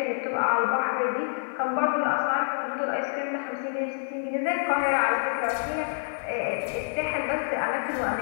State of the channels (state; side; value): silent; right; digital silence